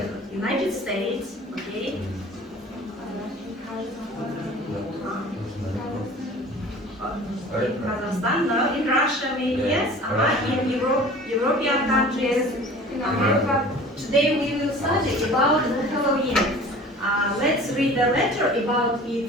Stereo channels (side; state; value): both; normal; correlation 0.44